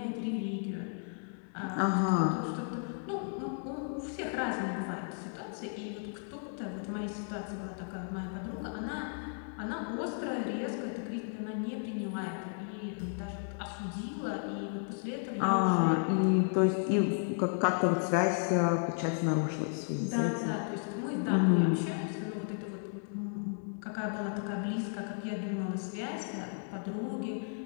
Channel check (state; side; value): silent; right; 55 dB below the other